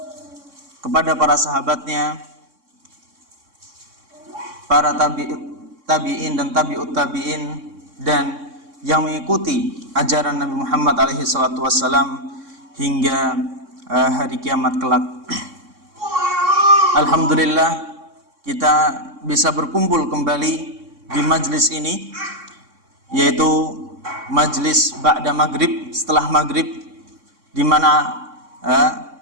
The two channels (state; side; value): late; left; 3.6 ms